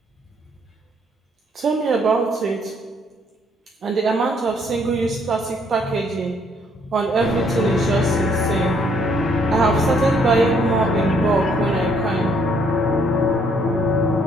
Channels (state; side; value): normal; both; correlation 0.67